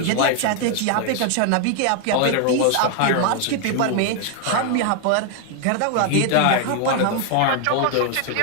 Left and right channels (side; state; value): both; different; correlation 0.00